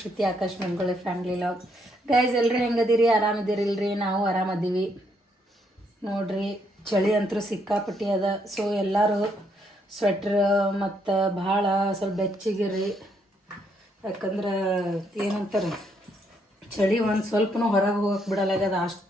Akash Mangolli family vlog. Guys ಎಲ್ಲರೂ ಹೆಂಗದಿರಿ? ಆರಾಮದಿರಿಲ್ರಿ? ನಾವು ಆರಾಮದೀವಿ ನೋಡ್ರಿ. ಚಳಿ ಅಂತೂ ಸಿಕ್ಕಾಪಟ್ಟಿ ಅದ. ಸೊ ಎಲ್ಲರೂ ಸ್ವೆಟ್ರ್ ಮತ್ತು ಭಾಳ ಸ್ವಲ್ಪ ಬೆಚ್ಚಗಿರಿ. ಯಾಕಂದ್ರೆ ಏನಂತಾರೆ, ಚಳಿ ಒಂದು ಸ್ವಲ್ಪನೂ ಹೊರಗೆ ಹೋಗಕ್ಕೆ ಬಿಡಲಾಗ್ಯದ,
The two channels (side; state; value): both; normal; correlation 0.73